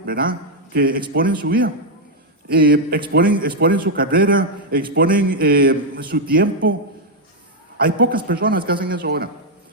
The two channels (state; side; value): normal; both; correlation 0.00